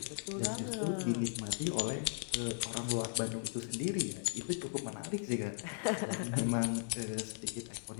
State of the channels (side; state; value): right; silent; digital silence